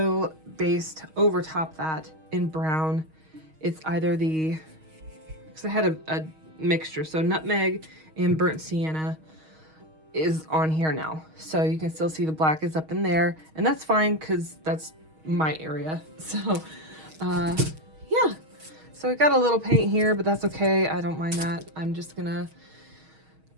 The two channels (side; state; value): left; late; 6.3 ms